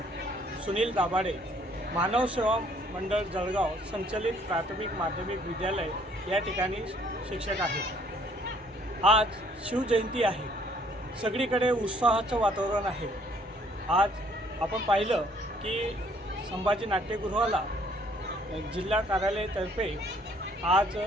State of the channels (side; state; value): both; normal; correlation 0.62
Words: सुनील दाभाडे, मानव सेवा मंडळ जळगाव संचलित प्राथमिक माध्यमिक विद्यालय या ठिकाणी शिक्षक आहे. आज शिवजयंती आहे. सगळीकडे उत्साहाचं वातावरण आहे. आज आपण पाहिलं की संभाजी नाट्यगृहाला जिल्हा कार्यालयातर्फे आज